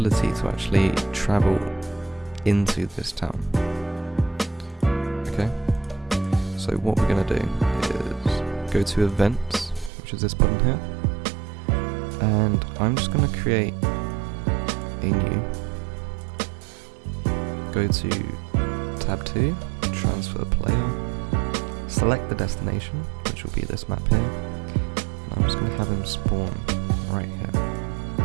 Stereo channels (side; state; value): left; drops out; at 9.9 s